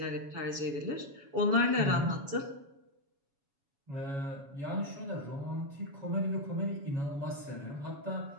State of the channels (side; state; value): left; late; 7.1 ms